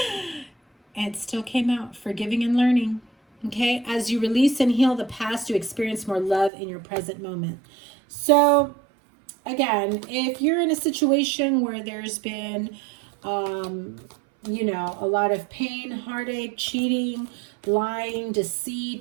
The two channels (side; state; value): left; drops out; at 6.5 s